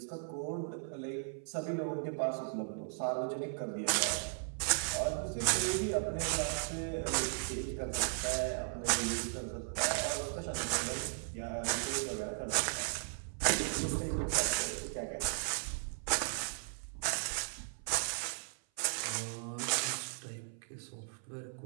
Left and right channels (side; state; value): left; silent; 53 dB below the other